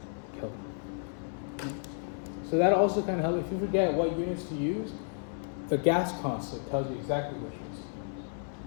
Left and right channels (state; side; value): silent; right; 56 dB below the other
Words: Kelvin. So that also kind of helps. If you forget what units to use, the gas constant tells you exactly which units to